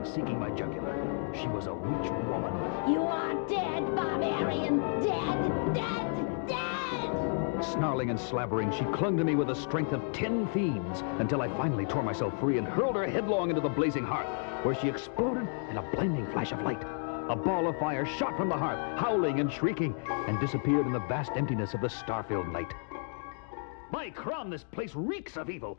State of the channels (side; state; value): right; silent; 57 dB below the other